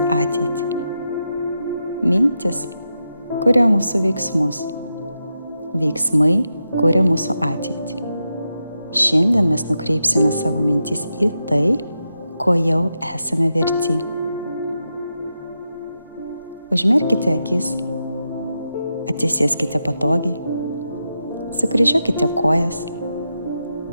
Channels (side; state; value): both; inverted; correlation -0.87